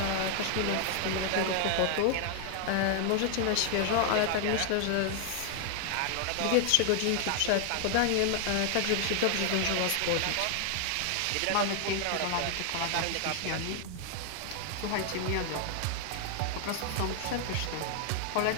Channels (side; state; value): both; different; correlation 0.00